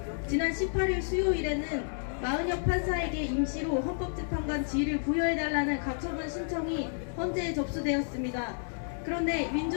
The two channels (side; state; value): right; silent; digital silence